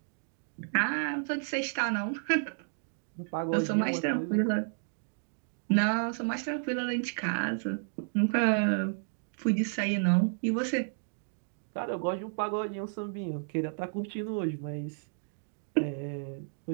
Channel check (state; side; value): silent; left; digital silence